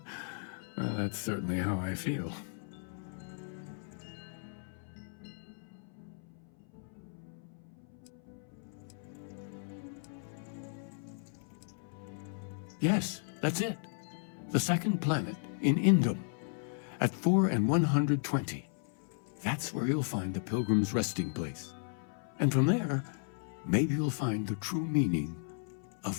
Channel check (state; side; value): silent; right; 54 dB below the other